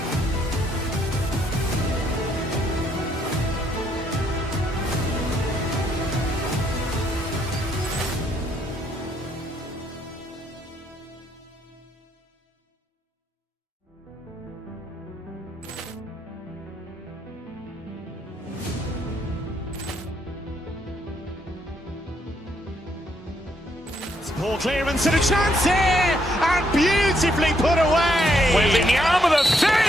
Poor clearance and a chance here, and beautifully put away. Wembanyama with a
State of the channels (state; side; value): normal; both; correlation 0.73